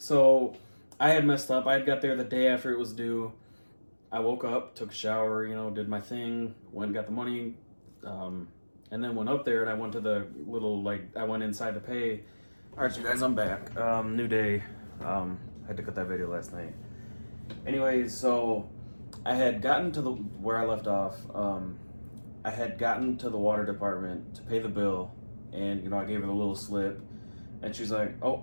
I had messed up. I had got there the day after it was due. I woke up, took a shower, did my thing, went and got the money, and then went up there, and I went to the little, I went inside to pay. All right, you guys, I'm back. New day. I had to cut that video last night. Anyways, so I had gotten to where I left off. I had gotten to the water department to pay the bill, and, I gave her the little slip, and she's like, oh,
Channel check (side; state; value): both; inverted; correlation -1.00